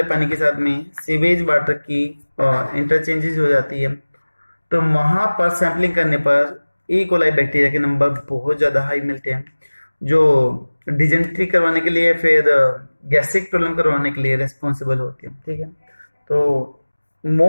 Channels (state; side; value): inverted; both; correlation -1.00